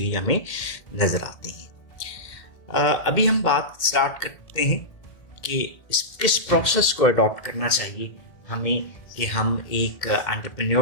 हमें नज़र आती हैं। अभी हम बात स्टार्ट करते हैं कि किस प्रोसेस को अडॉप्ट करना चाहिए हमें कि हम एक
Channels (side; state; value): right; late; 1.7 ms